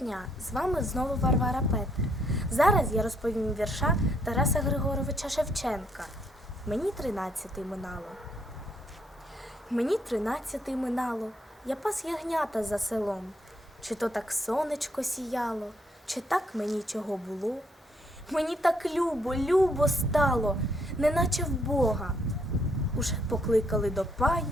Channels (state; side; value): normal; both; correlation 0.71